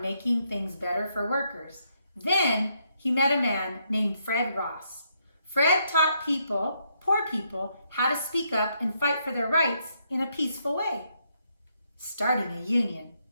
making things better for workers. Then he met a man named Fred Ross. Fred taught poor people, how to speak up and fight for their rights in a peaceful way, starting a union.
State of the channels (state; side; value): inverted; both; correlation -0.76